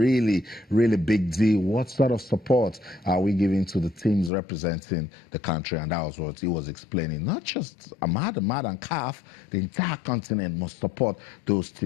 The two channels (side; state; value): right; drops out; at 4.3 s